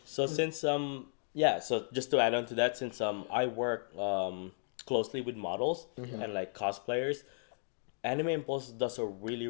So 'Cause- since so just to add on to that, since I work closely with models Yeah. and like cosplayers, Anime Impulse does a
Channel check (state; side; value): silent; right; digital silence